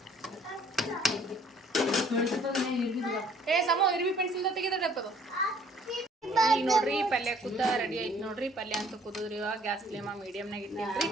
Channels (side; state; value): both; normal; correlation 0.58